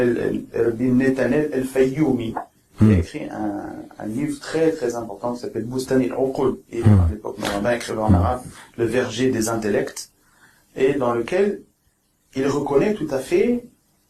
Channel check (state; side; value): identical; both; correlation 1.00